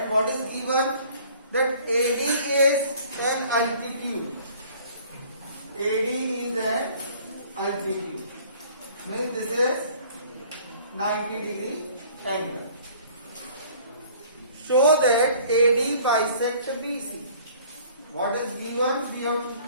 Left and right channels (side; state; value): both; inverted; correlation -0.53